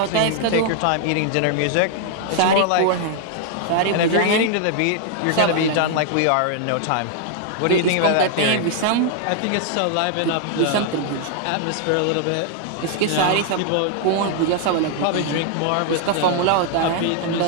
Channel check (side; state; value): both; different; correlation 0.00